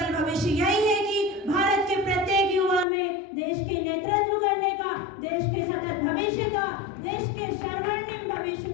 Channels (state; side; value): drops out; right; at 2.9 s